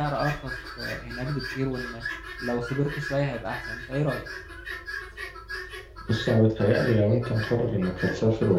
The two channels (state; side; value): identical; both; correlation 1.00